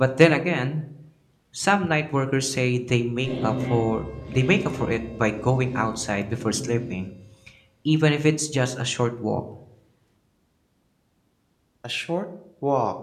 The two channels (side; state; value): both; identical; correlation 1.00